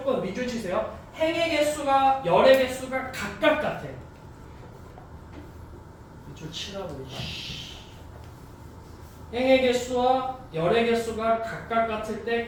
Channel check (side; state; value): both; identical; correlation 1.00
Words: 밑줄 치세요. 행의 개수가 열의 개수가 각각 같아. 밑줄 치라고. 행의 개수와 열의 개수가 각각 같을